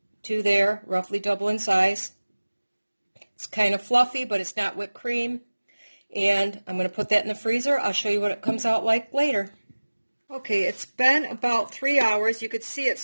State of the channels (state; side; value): inverted; both; correlation -1.00